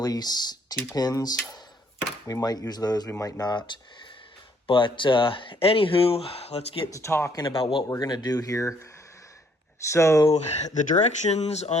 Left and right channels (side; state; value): both; normal; correlation 0.66